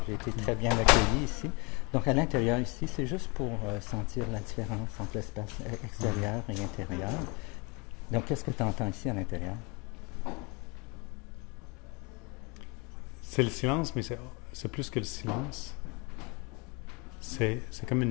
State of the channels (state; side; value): quieter; right; 29.8 dB